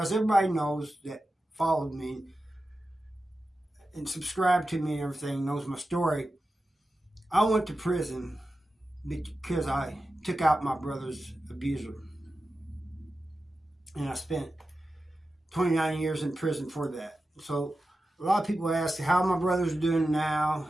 everybody knows that followed me and subscribed to me and everything, knows my story. I went to prison because I took out my brother's abuser. And I spent 29 years in prison for that. So a lot of people ask how my brother's doing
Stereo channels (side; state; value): both; normal; correlation 0.92